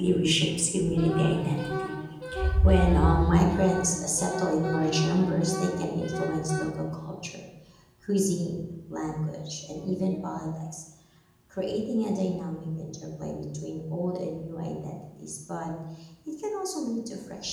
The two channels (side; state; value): both; identical; correlation 1.00